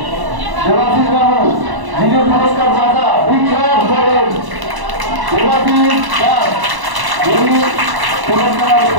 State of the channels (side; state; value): left; late; 1.0 ms